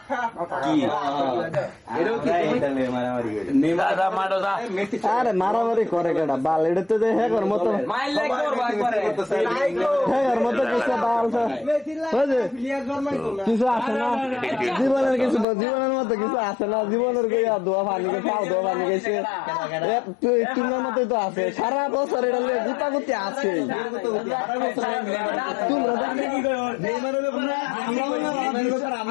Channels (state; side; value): drops out; right; at 15.5 s